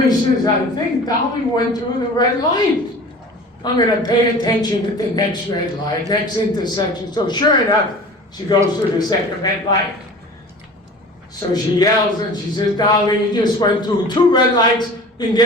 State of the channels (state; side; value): normal; both; correlation 0.40